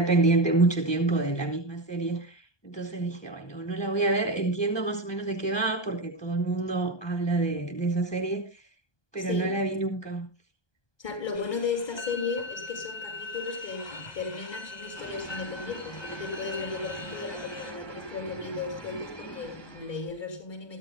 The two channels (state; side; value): late; right; 1.2 ms